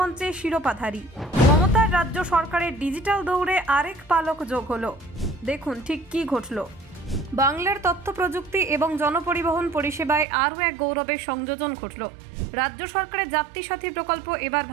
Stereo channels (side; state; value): left; drops out; at 10.2 s